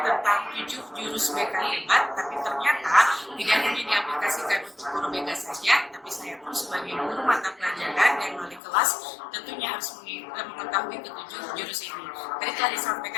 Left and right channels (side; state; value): right; drops out; at 8.6 s